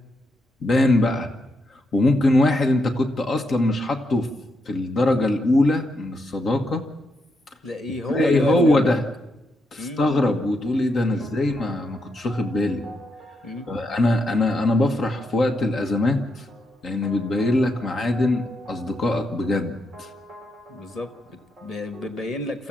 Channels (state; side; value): normal; both; correlation 0.81